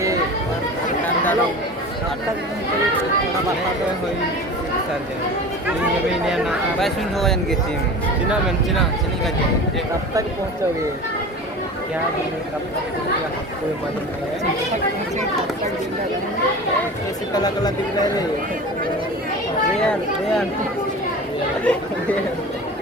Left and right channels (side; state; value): both; normal; correlation 0.35